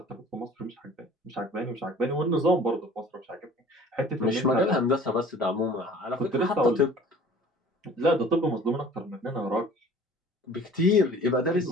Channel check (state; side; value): normal; both; correlation 0.47